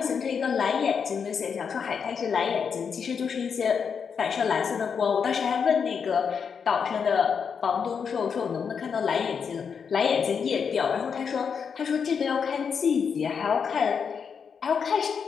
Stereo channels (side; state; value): right; quieter; 6.5 dB